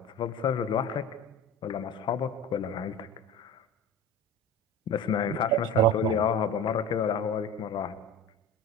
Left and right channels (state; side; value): normal; both; correlation 0.33